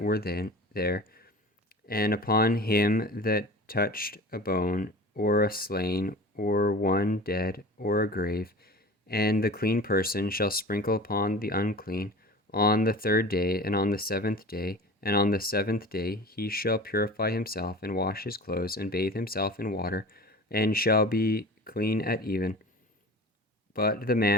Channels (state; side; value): normal; both; correlation 0.37